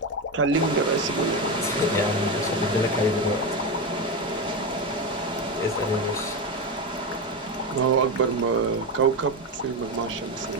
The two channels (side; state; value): both; normal; correlation 0.15